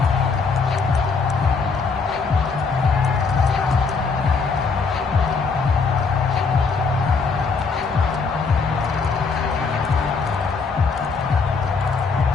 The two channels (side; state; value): right; quieter; 4.8 dB